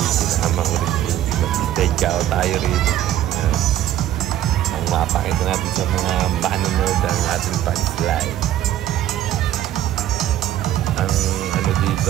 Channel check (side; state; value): left; quieter; 12.5 dB